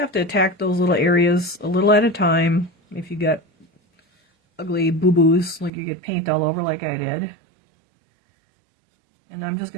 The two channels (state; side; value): drops out; left; at 5.7 s